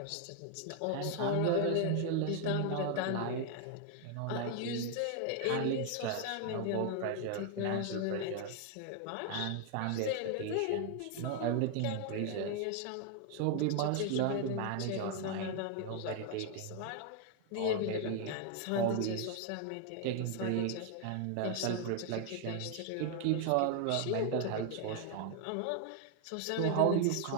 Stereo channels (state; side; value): different; both; correlation 0.00